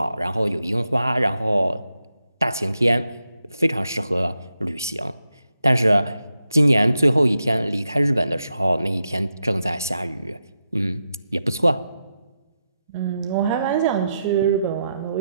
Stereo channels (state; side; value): inverted; both; correlation -0.86